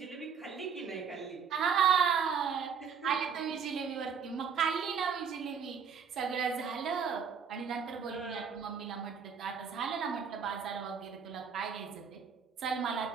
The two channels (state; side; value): quieter; left; 6.6 dB